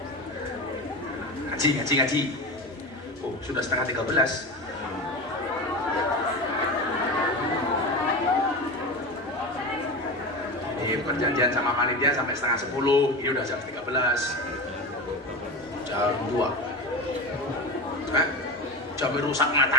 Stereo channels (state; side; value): normal; both; correlation 0.25